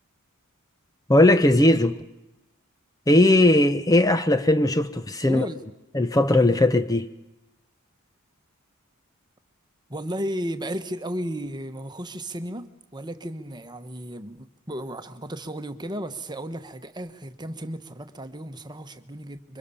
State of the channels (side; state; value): both; normal; correlation 0.69